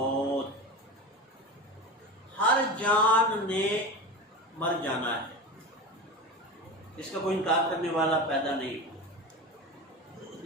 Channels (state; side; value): normal; both; correlation 0.27